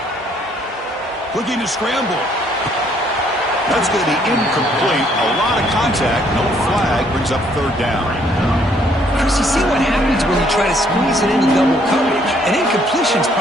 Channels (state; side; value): normal; both; correlation 0.66